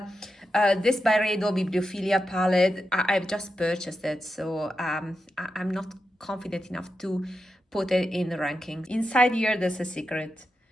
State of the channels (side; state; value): both; normal; correlation 0.88